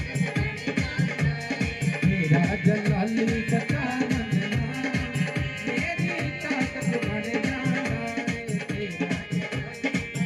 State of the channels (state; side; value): identical; both; correlation 1.00